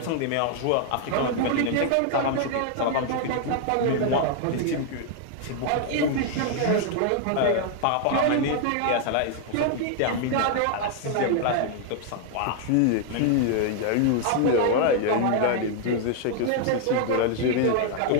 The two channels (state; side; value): different; both; correlation 0.00